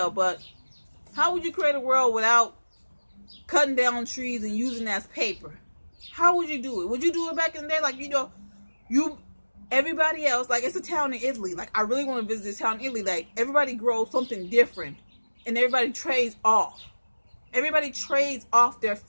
But how would you create a world without cutting down trees and using that as paper? How would you do it? Would you do it back in the day? Like, you know, Everybody else, like it's a town in Italy. Like I really want to visit this town in Italy. Like everybody grows something different, and everybody trades off. Everybody trades off their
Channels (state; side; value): inverted; both; correlation -1.00